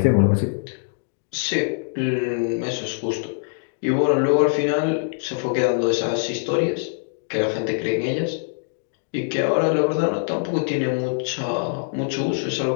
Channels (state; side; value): silent; right; digital silence